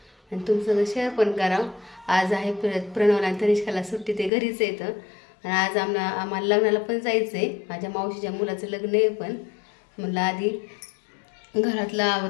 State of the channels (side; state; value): right; drops out; at 4.3 s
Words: आणि तुमचं शेअर पण करावं। आज आहे प्रणवला तनिष्काला सुट्टी, ते घरीच येतं आणि आज आम्हाला लग्नाला पण जायचंय। माझ्या मावशीच्या मुलाचं लग्न आहे, पण म्हणलं आधी घरातलं